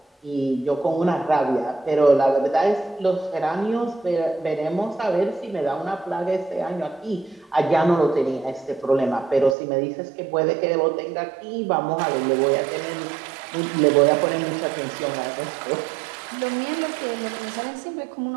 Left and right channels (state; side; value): drops out; left; at 9.6 s